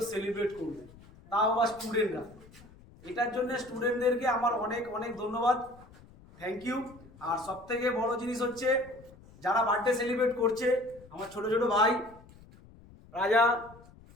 সেলিব্রেট করবে, তাও আবার স্টুডেন্টরা। এটার জন্য স্টুডেন্টদেরকে আমার অনেক অনেক ধন্যবাদ, থ্যাংক ইউ। আর সব থেকে বড় জিনিস হচ্ছে যারা বার্থডে সেলিব্রেট করছে, আমার ছোট ছোট ভাই রাজা,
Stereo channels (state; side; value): noise; left; rumble, 23 dB below the sound